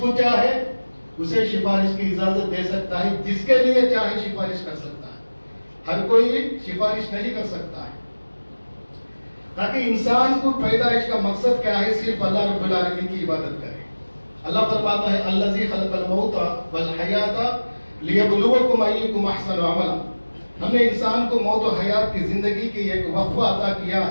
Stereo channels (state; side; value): inverted; both; correlation -1.00